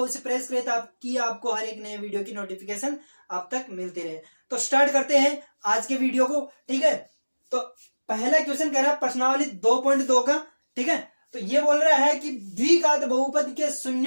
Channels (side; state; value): both; inverted; correlation -1.00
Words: प्रेस करें ताकि आपको हर एक नए वीडियो की नोटिफिकेशन आप तक मिलती रहे। तो स्टार्ट करते हैं आज के वीडियो को। ठीक है, तो पहला क्वेश्चन कह रहा है प्रश्नावली 2.2 का। ठीक है, तो ये बोल रहा है कि द्विघात बहुपद के